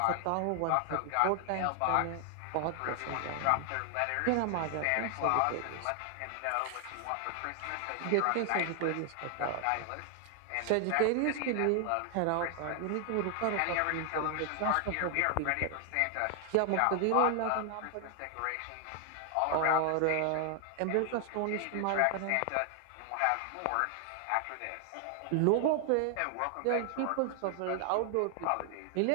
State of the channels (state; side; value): different; both; correlation 0.00